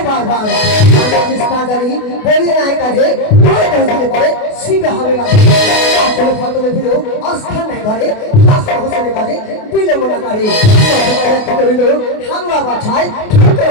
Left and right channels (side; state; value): right; late; 28 ms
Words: বারবার আমি না জানি বলি নাই কাজে পরে 10 দিনে পরে শিখে হবে না আসলে ফতলে ফিরেও অস্থান নাই ঘরে হাসান হোসেনের কাজে বিলম্ব না করে কত করিল হামলা বাছাই ঠুকে